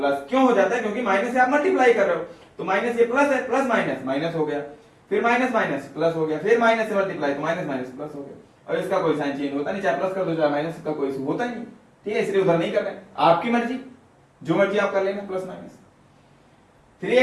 क्यों हो जाता है? क्योंकि माइनस से आप मल्टीप्लाई कर रहे हो, तो माइनस ये प्लस है, प्लस माइनस माइनस हो गया, फिर माइनस माइनस प्लस हो गया, फिर माइनस से मल्टीप्लाई तो माइनस माइनस प्लस हो गया। और इसका कोई साइन चेंज होता नहीं, चाहे प्लस कर दो चाहे माइनस, का कोई होता ही नहीं। ठीक है, इसलिए उधर नहीं कर रहे, आपकी मर्जी, जो मर्जी आप कर लेना, प्लस माइनस।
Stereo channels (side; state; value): both; identical; correlation 1.00